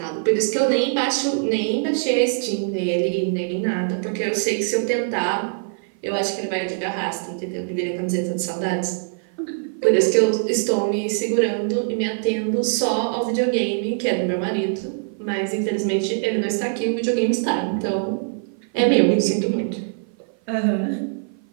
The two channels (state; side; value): silent; left; 56 dB below the other